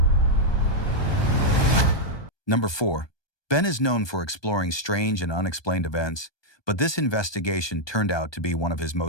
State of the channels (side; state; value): right; late; 1.2 ms